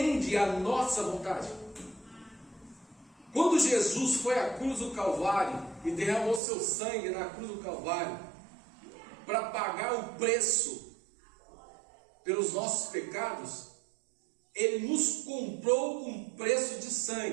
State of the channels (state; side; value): drops out; left; at 6.4 s